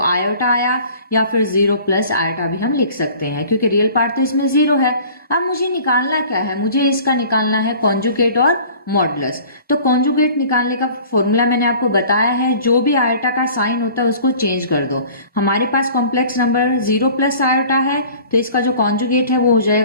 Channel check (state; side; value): inverted; both; correlation -0.47